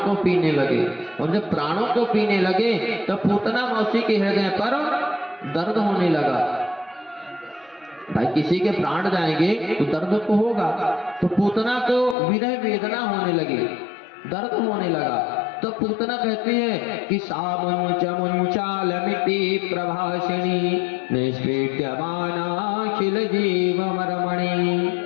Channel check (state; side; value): drops out; right; at 12.2 s